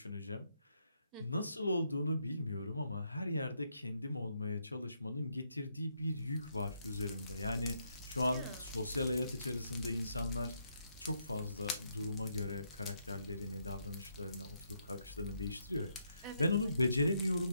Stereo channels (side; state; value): both; inverted; correlation -0.77